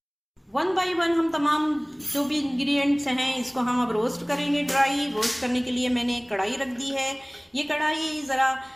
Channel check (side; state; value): both; identical; correlation 1.00